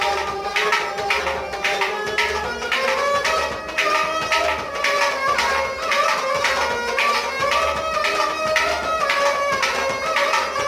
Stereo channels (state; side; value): identical; both; correlation 1.00